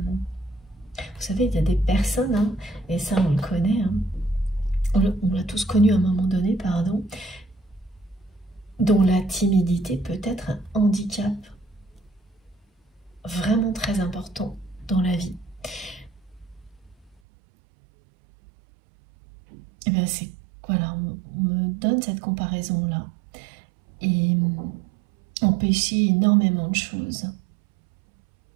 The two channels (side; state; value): left; drops out; at 17.2 s